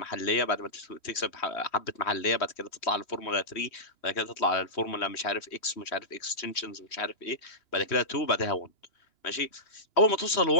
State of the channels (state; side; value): late; right; 3.1 ms